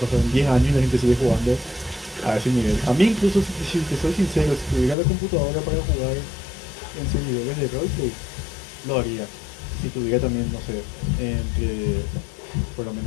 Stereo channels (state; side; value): drops out; right; at 5.0 s